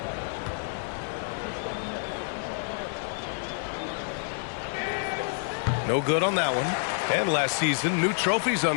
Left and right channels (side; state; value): right; silent; 59 dB below the other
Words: No good on that one. And last season, new trophies